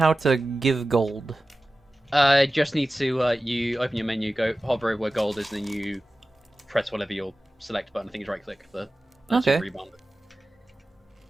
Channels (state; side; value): normal; both; correlation 0.95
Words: to give gold. Just need to you open your menu, go hover over where gold is, and then you press whatever your select button. I think it's right click for Okay. rebound.